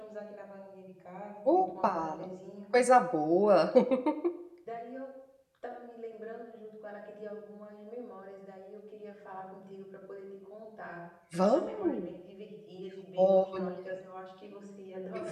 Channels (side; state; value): both; identical; correlation 1.00